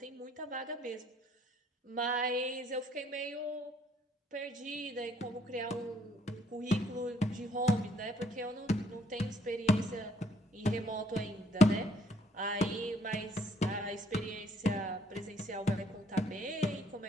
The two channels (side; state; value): both; normal; correlation 0.65